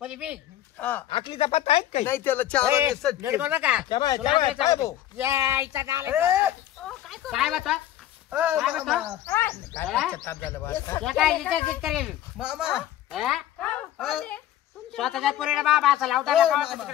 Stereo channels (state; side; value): quieter; right; 12.7 dB